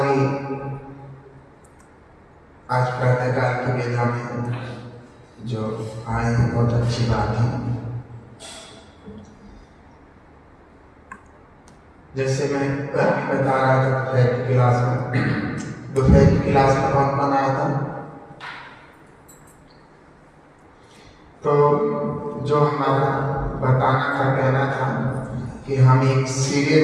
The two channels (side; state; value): both; identical; correlation 1.00